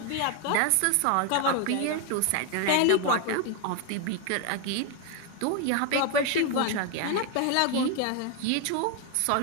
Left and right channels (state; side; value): different; both; correlation 0.01